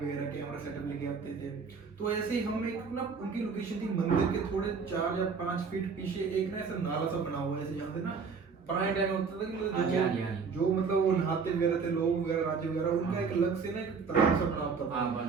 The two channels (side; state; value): left; quieter; 5.4 dB